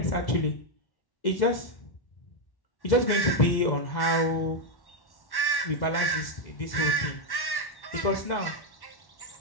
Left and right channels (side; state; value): right; late; 1.1 ms